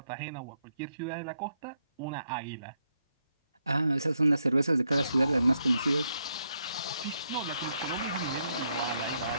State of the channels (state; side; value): inverted; both; correlation -0.77